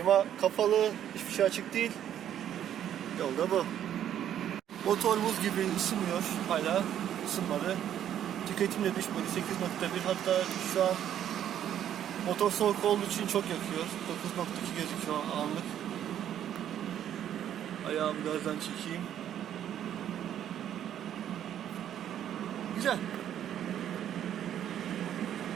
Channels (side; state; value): left; quieter; 10.4 dB